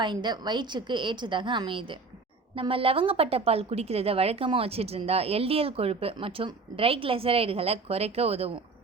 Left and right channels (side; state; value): left; quieter; 4.1 dB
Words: வயிற்றுக்கு ஏற்றதாக அமையுது. நம்ம லவங்கப்பட்ட பால் குடிக்கிறத வழக்கமாக வச்சுட்டு இருந்தால் எல்டிஎல் கொழுப்பு மற்றும் ட்ரைக்ளிசரைடுகளை குறைக்க உதவும்.